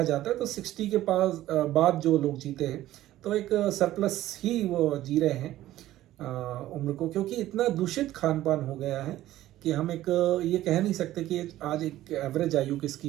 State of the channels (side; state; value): left; quieter; 14.5 dB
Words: जाता है तो 60 के पास बाद जो लोग जीते हैं तो एक सरप्लस ही वो जी रहे हैं उम्र को, क्योंकि इतना दूषित खान पान हो गया है कि हम एक ये कह नहीं सकते कि आज एक एवरेज आयु किसकी